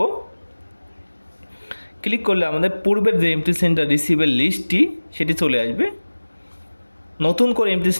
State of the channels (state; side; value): inverted; both; correlation -1.00